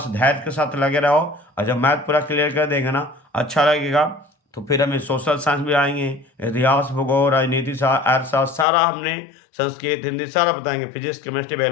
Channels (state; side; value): drops out; right; at 8.7 s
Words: धैर्य के साथ लगे रहो, और जब मैथ पूरा क्लियर कर देंगे ना, अच्छा लगेगा, तो फिर हमें सोशल साइंस भी आएंगे, इतिहास, भूगोल, राजनीति, अर्थशास्त्र, सारा हमने संस्कृत, हिंदी सारा बताएंगे, फिजिक्स, केमिस्ट्री,